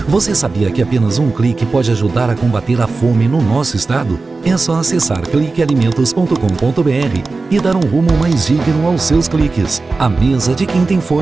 Você sabia que apenas um clique pode ajudar a combater a fome no nosso estado? É só acessar cliquealimentos.com.br e dar um rumo mais digno aos seus cliques. A mesa de quem tem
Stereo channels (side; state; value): left; quieter; 3.8 dB